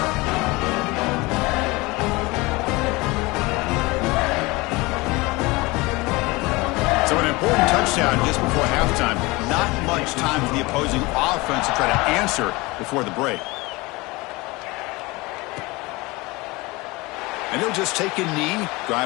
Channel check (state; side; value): quieter; right; 23.3 dB